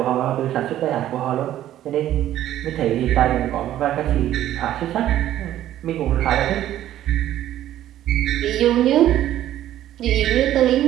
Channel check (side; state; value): left; quieter; 12.6 dB